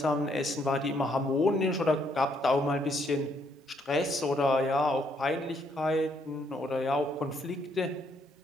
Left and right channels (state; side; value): normal; both; correlation 0.71